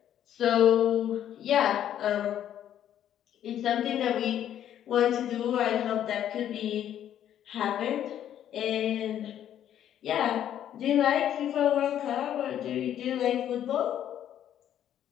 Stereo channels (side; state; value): right; quieter; 10.6 dB